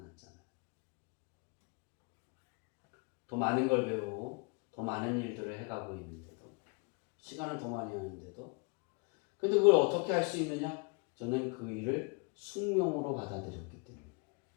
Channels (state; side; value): quieter; right; 32.3 dB